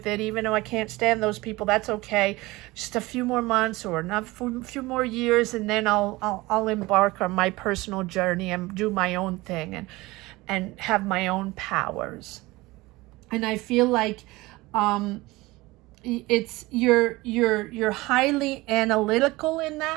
it, even though I can't stand those people. That's okay. Just a few more months or a few more years, and then I'll embark on my personal journey and do my own thing and have my own powers. And I feel like it's you're highly analytical in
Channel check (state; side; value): quieter; left; 20.8 dB